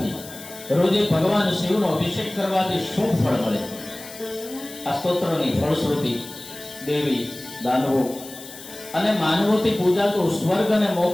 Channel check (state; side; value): noise; left; hiss, 15 dB below the sound